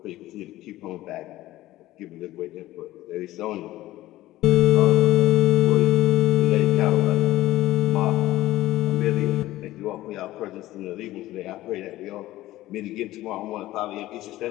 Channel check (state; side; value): quieter; right; 16.1 dB